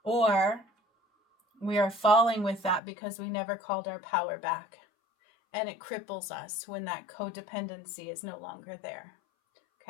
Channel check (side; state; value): right; drops out; at 2.8 s